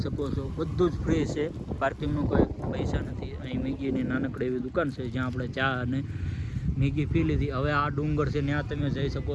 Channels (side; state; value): both; identical; correlation 1.00